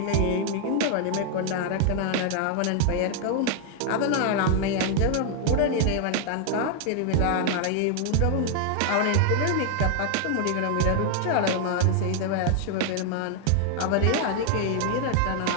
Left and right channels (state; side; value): different; both; correlation 0.00